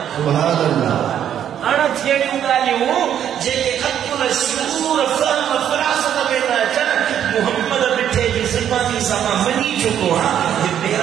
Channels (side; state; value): left; quieter; 9.8 dB